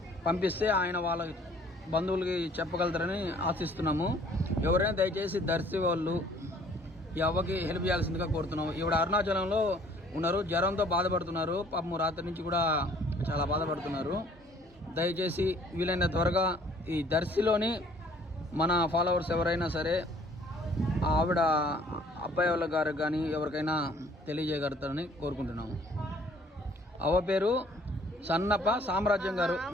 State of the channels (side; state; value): both; normal; correlation 0.57